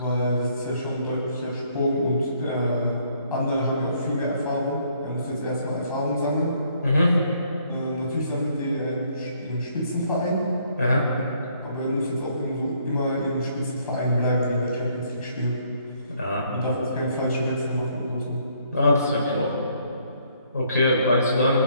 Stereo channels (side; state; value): both; inverted; correlation -0.67